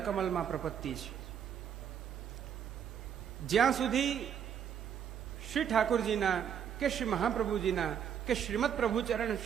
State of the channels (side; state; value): left; quieter; 8.5 dB